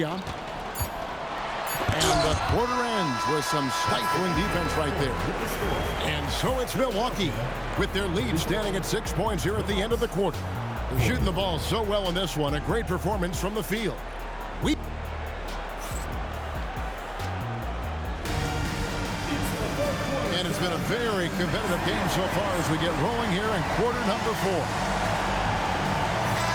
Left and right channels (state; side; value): identical; both; correlation 1.00